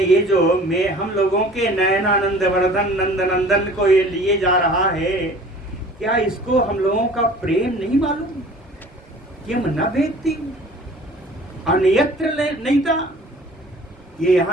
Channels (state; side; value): normal; both; correlation 0.47